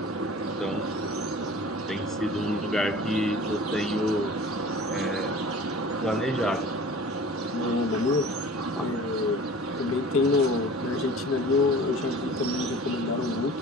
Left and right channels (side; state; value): both; normal; correlation 0.42